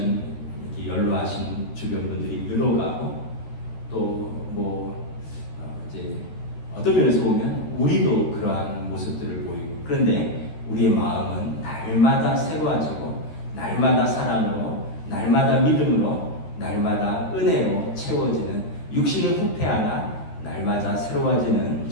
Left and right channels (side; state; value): right; late; 13 ms